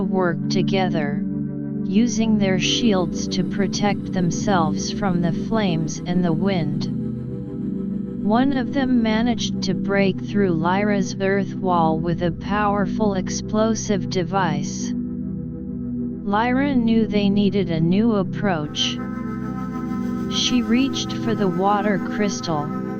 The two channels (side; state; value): both; identical; correlation 1.00